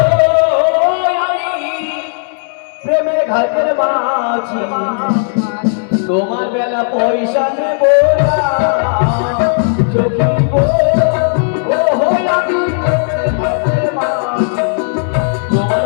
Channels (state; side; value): silent; right; digital silence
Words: আমি প্রেমের ঘাটের মাঝি, তোমার বেলা পয়সা নেব না সখী গো, ও হই আমি প্রেমের ঘাটের মাঝি, তোমার